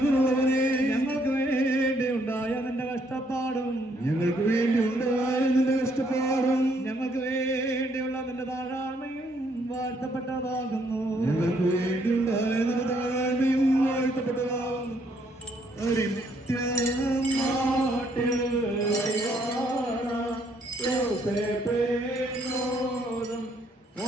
ഞങ്ങൾക്ക് വേണ്ടി ഉണ്ടായ നിന്റെ കഷ്ടപ്പാടും ഞങ്ങൾക്ക് വേണ്ടിയുള്ള നിന്റെ താഴ്മയും വാഴ്ത്തപ്പെട്ടതാകുന്നു.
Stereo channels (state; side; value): normal; both; correlation 0.69